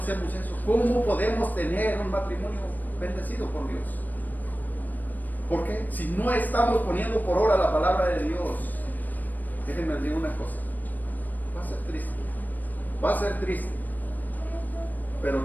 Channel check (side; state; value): right; late; 0.086 ms